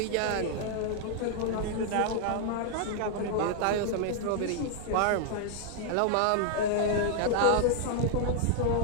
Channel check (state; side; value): different; both; correlation 0.00